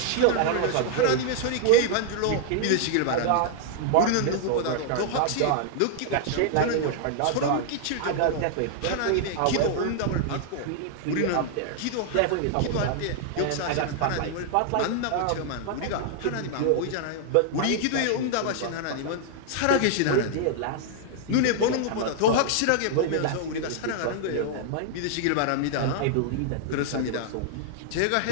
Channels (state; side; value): different; both; correlation -0.01